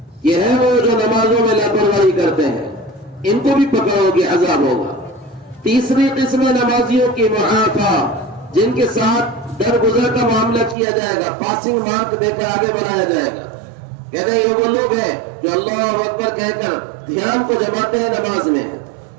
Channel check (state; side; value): drops out; left; at 10.8 s